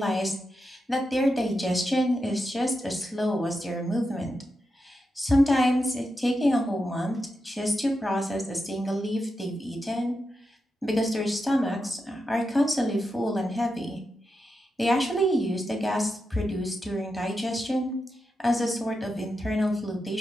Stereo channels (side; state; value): both; normal; correlation 0.87